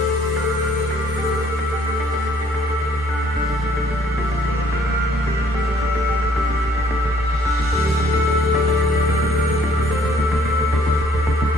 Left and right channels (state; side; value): normal; both; correlation 0.62